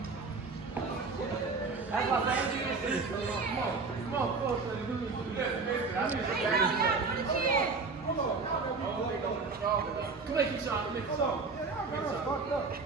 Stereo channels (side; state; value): left; quieter; 4.3 dB